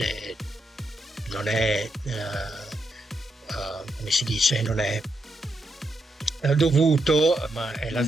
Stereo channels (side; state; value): both; normal; correlation 0.82